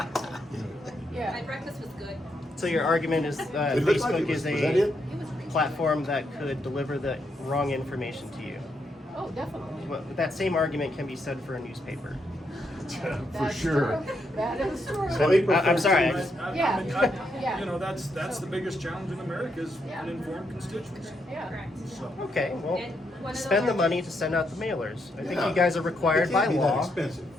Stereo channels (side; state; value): both; normal; correlation 0.79